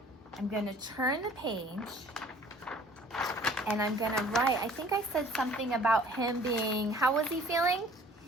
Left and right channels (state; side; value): normal; both; correlation 0.52